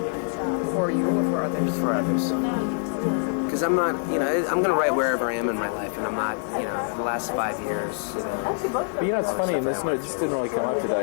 For you or for others? for others. Because I'm not, you know, I'm going to write wherever I am in my life, and I'm not, you know, the last 5 years, you know. But you know, it's funny, and this just didn't really come up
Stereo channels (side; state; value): right; silent; 57 dB below the other